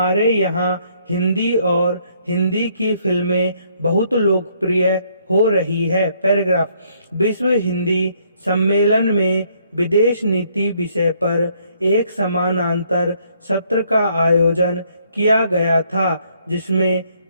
यहाँ हिंदी और हिंदी की फिल्में बहुत लोकप्रिय हो रही है। पैराग्राफ। विश्व हिंदी सम्मेलन में विदेश नीति विषय पर एक समानांतर सत्र का आयोजन किया गया था, जिसमें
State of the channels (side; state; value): both; inverted; correlation -0.67